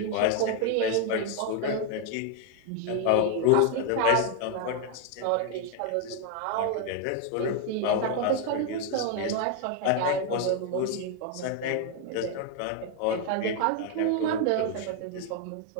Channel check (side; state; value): both; different; correlation 0.00